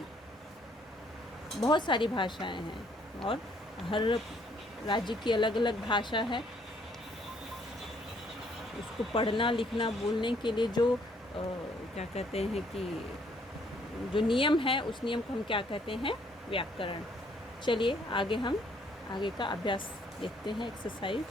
बहुत सारी भाषाएं हैं और हर राज्य की अलग अलग भाषा है। उसको पढ़ना, लिखना, बोलने के लिए जो क्या कहते हैं कि जो नियम है, उस नियम को हम क्या कहते हैं, व्याकरण। चलिए आगे का अभ्यास देखते हैं, एक्सरसाइज।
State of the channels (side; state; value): both; normal; correlation 0.66